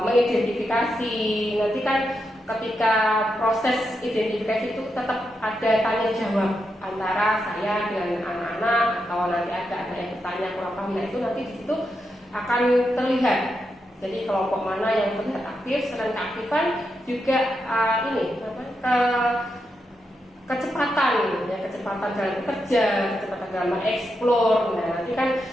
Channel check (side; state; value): both; normal; correlation 0.84